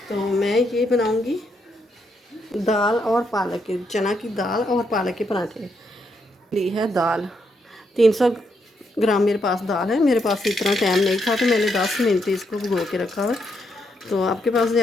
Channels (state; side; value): normal; both; correlation 0.78